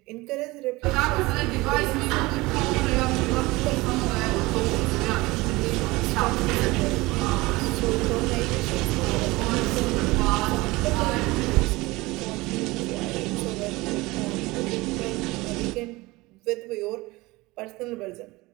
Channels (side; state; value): left; quieter; 21.6 dB